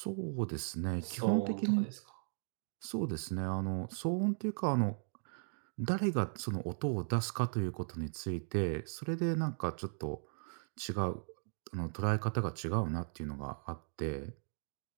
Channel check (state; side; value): silent; left; digital silence